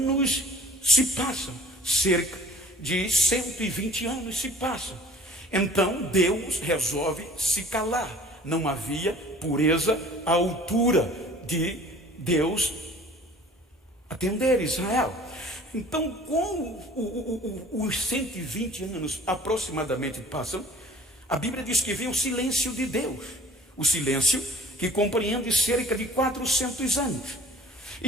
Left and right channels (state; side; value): normal; both; correlation 0.49